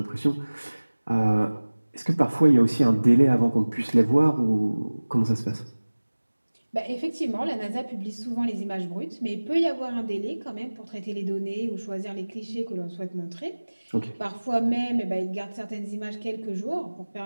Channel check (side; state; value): both; inverted; correlation -1.00